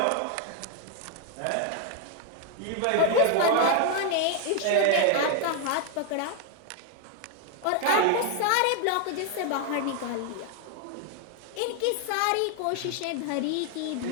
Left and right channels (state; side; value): different; both; correlation 0.00